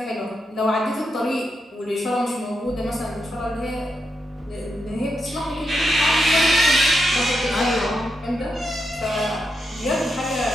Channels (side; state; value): both; normal; correlation 0.84